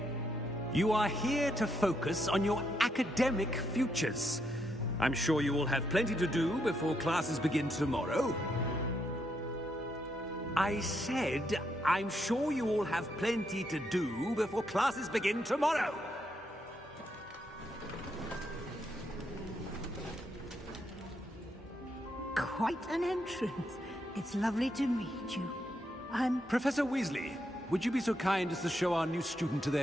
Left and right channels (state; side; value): normal; both; correlation 0.78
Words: You are here to focus on your academic futures. I'm sure you will have plenty to do before classes begin tomorrow. I said, I'm sure you all have plenty to do before classes begin tomorrow. Quite an entrance. It's lovely to meet you. I'm... Professor Weasley, would you be so kind as to show our new student to